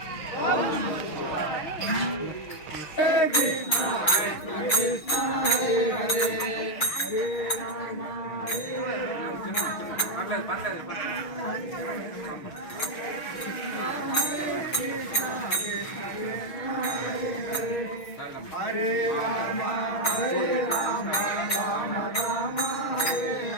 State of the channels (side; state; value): right; late; 6.3 ms